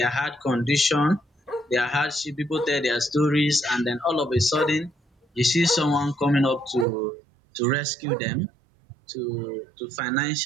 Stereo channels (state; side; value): drops out; left; at 6.9 s